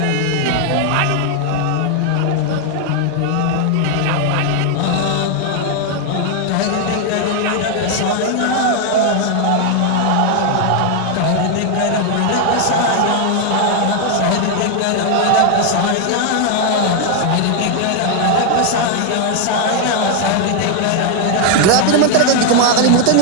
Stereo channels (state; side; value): different; both; correlation 0.00